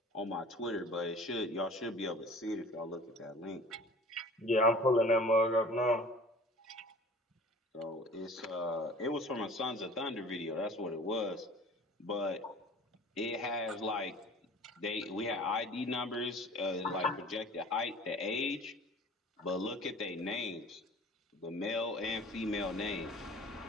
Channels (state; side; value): normal; both; correlation 0.44